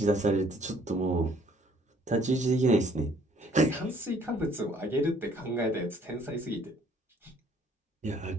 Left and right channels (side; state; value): both; normal; correlation 0.61